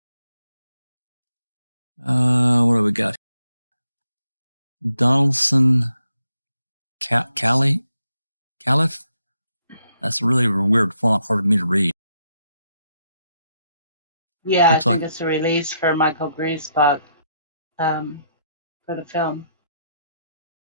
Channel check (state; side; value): inverted; both; correlation -0.77